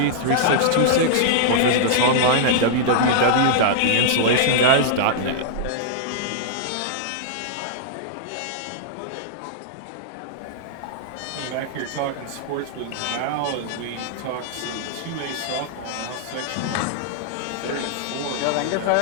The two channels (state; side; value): different; both; correlation -0.02